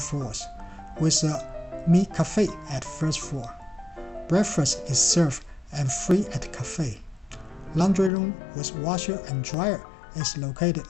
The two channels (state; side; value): drops out; right; at 8.1 s